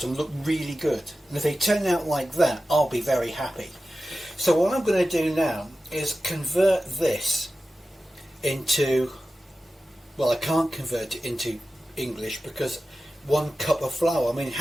look really good. And if they turn out like that, I'll be very happy. So what I'm going to do now is convert this into, well, I can't convert it into English because 1 cup of flour, I mean,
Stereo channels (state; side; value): normal; both; correlation 0.94